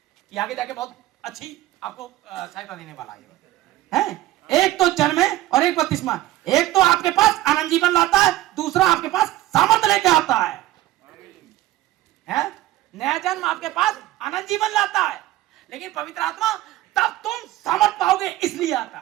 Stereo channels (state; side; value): quieter; left; 15.5 dB